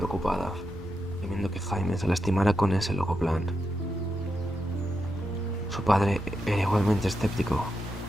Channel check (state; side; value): normal; both; correlation 0.86